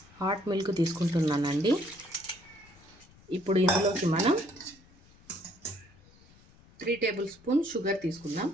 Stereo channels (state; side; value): noise; left; rumble, 26 dB below the sound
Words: హాట్ మిల్క్ తీసుకుంటున్నానండి. ఇప్పుడు ఇందులోకి మనం 3 టేబుల్ స్పూన్ షుగర్ తీసుకుందాం.